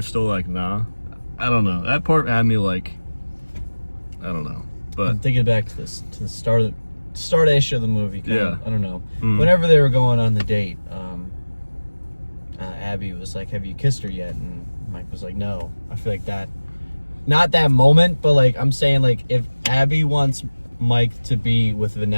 still like, nah, I don't know, that part had me like, I don't know. But I'm thinking back to the start of start-ish of the movie. Yeah. I don't know. Whenever they were going on the date, Abby was like, "Have you kissed her yet?" And Mike was like, "No." I feel like that, not that moment, but like I'm saying, like if Abby wants Mike to be with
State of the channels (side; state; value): both; inverted; correlation -1.00